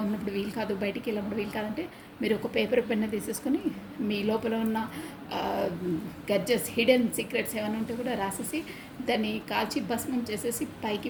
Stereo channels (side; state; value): both; identical; correlation 1.00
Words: ఉన్నప్పుడు వీలు కాదు, బయటికి వెళ్ళినప్పుడు వీలు కాదంటే మీరు ఒక పేపర్ పెన్ను తీసేసుకొని మీ లోపల ఉన్న గడ్జెస్, హిడెన్ సీక్రెట్స్ ఏమైనా ఉంటే కూడా రాసేసి దాన్ని కాల్చి భస్మం చేసేసి పైకి